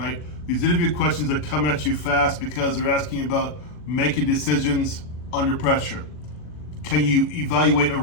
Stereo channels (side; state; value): right; late; 40 ms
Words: These interview questions are coming at you fast because they're asking about making decisions under pressure. Can you evaluate a